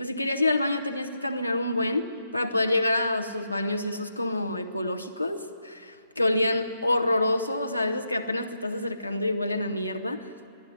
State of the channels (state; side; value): inverted; both; correlation -0.82